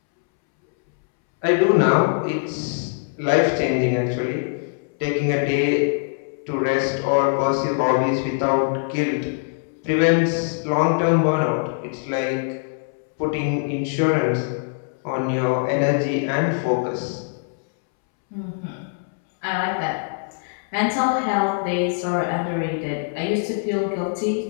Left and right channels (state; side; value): silent; right; 64 dB below the other